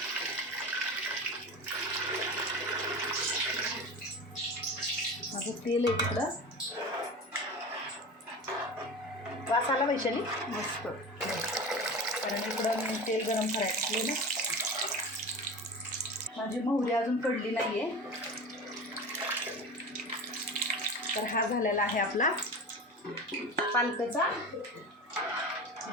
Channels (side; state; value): both; normal; correlation 0.30